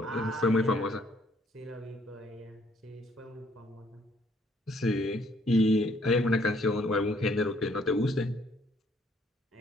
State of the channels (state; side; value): normal; both; correlation 0.65